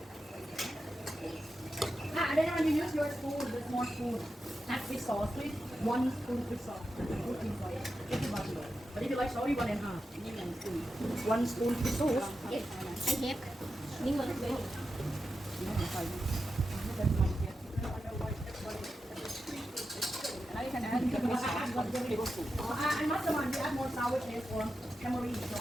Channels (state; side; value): normal; both; correlation 0.90